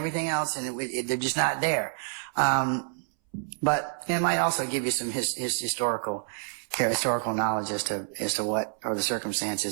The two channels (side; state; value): left; silent; 59 dB below the other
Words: else, and they're just not there. But it might also give you some historical knowledge as to what or the